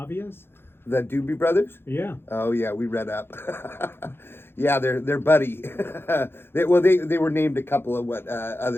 The Doobie Brothers? Yeah. Oh yeah, we read up. Yeah, they're buddy. They were named a couple of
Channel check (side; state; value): right; late; 0.11 ms